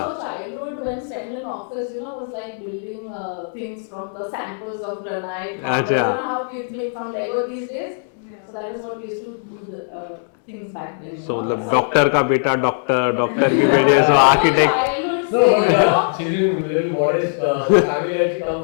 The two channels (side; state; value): right; silent; digital silence